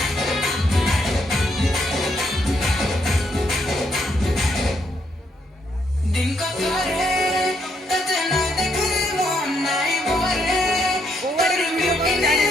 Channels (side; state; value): both; normal; correlation 0.75